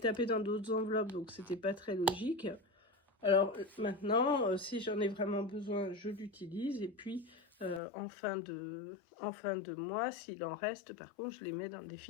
dans d'autres enveloppes, donc c'était pas très logique. Alors maintenant, si j'en ai vraiment besoin, je l'utilise. Et puis, en fin de mois, s'il en reste, par contre, je les mets dans le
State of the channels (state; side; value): drops out; right; at 7.8 s